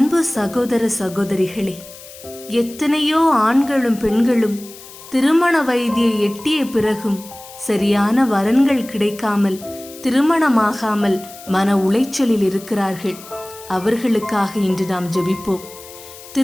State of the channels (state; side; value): noise; left; hiss, 18 dB below the sound